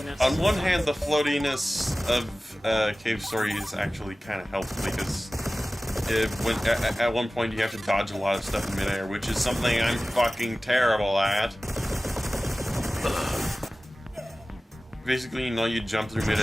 On one hand, the floatiness of Cave Story is actually kind of helpful because at one point you have to dodge a lot of stuff in midair, which is something I'm fucking terrible at. Basically, you know, you jump through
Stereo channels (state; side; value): normal; both; correlation 0.97